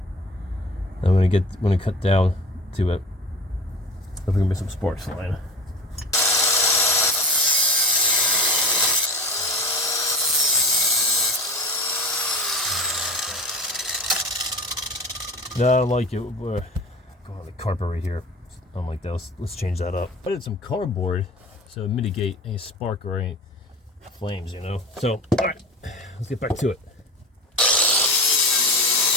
I'm going to cut down to it. There's going to be some sparks flying. No, I don't like it. Go on the carpet right here. I don't like that. Let's change that up. I did some cardboard so mitigate any spark or any flames, you know. So, all right, let's get back to it.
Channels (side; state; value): both; normal; correlation 0.36